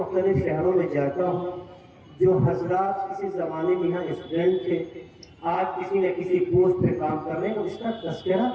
شہروں میں جاتا ہوں، جو حضرات کسی زمانے میں یہاں اسٹوڈنٹ تھے، آج کسی نہ کسی پوسٹ پہ کام کر رہے ہیں، اس کا تذکرہ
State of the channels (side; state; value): both; identical; correlation 1.00